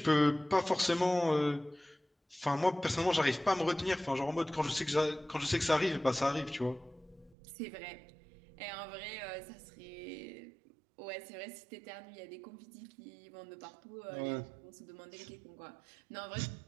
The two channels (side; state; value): left; drops out; at 7.4 s